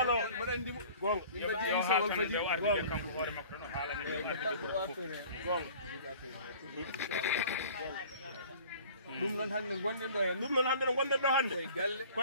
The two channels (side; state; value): both; inverted; correlation -0.46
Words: ɗum noon hannde gonɗen ɗo hen ɗum noon hannde no gonɗen ɗo hannde